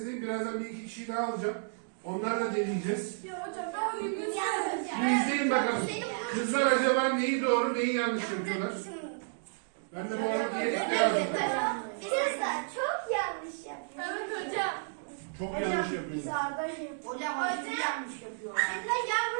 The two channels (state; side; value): silent; left; digital silence